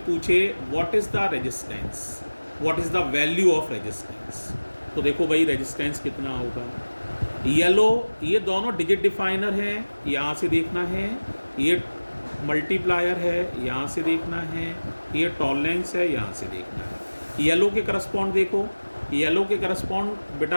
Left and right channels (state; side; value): inverted; both; correlation -1.00